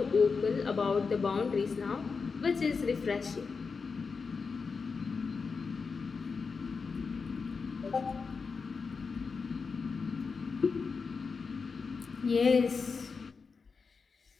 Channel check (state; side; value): quieter; right; 5.0 dB